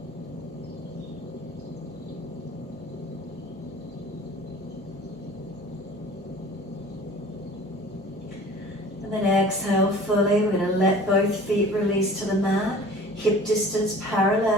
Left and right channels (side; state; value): both; normal; correlation 0.45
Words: And then exhale fully. We're going to let both feet release to the mat. Hip distance